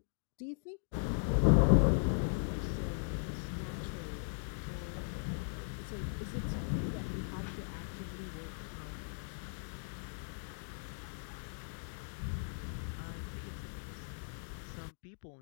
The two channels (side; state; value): right; silent; digital silence